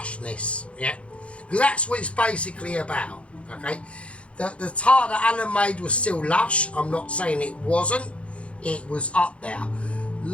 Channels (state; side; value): late; right; 0.061 ms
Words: yeah? Because that's what it's basically about, okay? The tart that Alan made was still lush. I'm not saying it wasn't. It was up there.